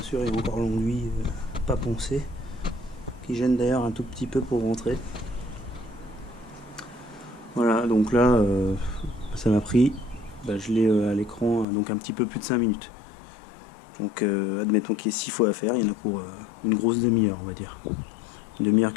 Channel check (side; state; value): right; drops out; at 11.7 s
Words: sûr, il y a encore l'enduit pas poncé, qui gêne d'ailleurs un tout petit peu pour rentrer. Voilà, donc là, ça m'a pris, je l'ai à l'écran, donc un petit peu plus de 5 minutes. Donc admettons qu'il y ait 6 fois à faire, il y en a pour une grosse demi-heure, on va dire. Une demi-heure,